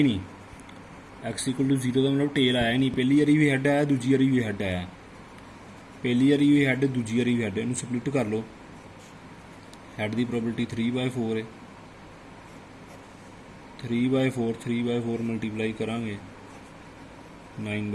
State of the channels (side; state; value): both; identical; correlation 1.00